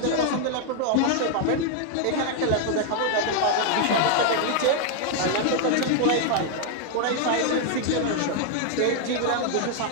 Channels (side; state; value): both; different; correlation 0.00